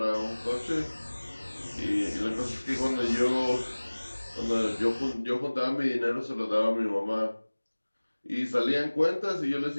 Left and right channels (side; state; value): both; inverted; correlation -1.00